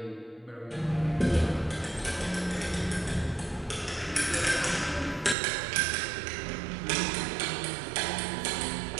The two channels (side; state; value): left; drops out; at 5.4 s